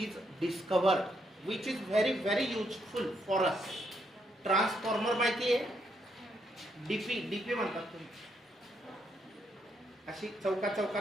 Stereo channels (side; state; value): both; normal; correlation 0.76